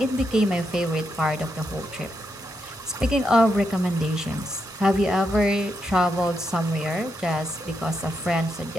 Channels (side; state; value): both; normal; correlation 0.82